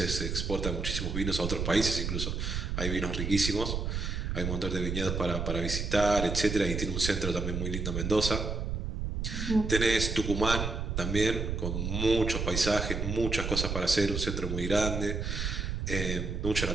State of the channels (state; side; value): noise; right; rumble, 2 dB below the sound